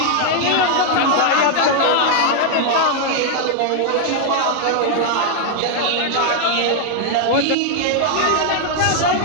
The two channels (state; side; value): different; both; correlation 0.00